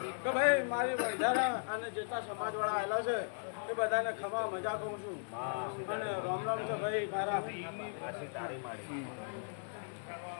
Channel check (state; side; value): silent; right; digital silence